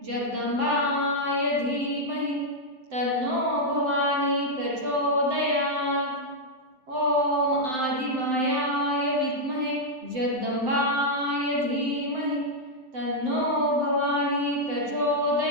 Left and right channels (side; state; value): left; late; 7.7 ms